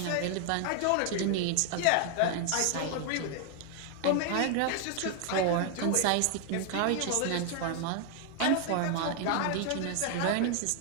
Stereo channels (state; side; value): different; both; correlation 0.00